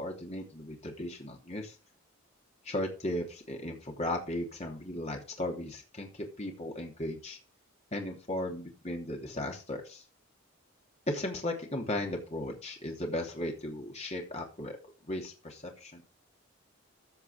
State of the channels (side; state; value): both; normal; correlation 0.48